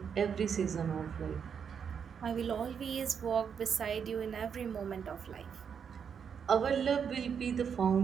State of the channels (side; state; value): left; quieter; 7.1 dB